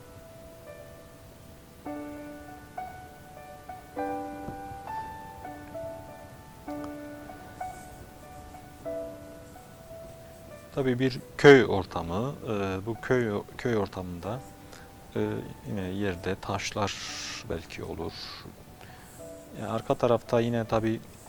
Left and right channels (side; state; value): both; identical; correlation 1.00